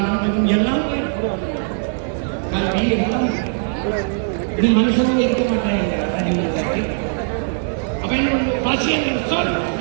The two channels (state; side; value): silent; left; digital silence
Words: எல்லாம் கல்வி எல்லாம் இது மனுஷனும் இருக்க மாட்டாங்க. அப்ப என்ன பசி என்ற சொல்